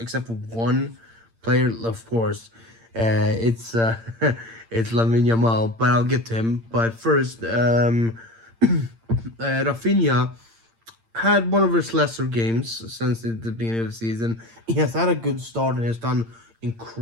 for one player, of course. It's it's Lamine Yamal, but I'll get to him. But first, Rafinha had one of his lesser games since the beginning of the season. He has had a good start and has done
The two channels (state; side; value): late; left; 8.8 ms